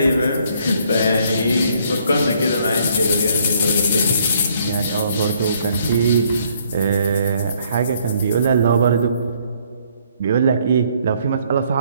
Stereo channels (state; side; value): inverted; both; correlation -0.65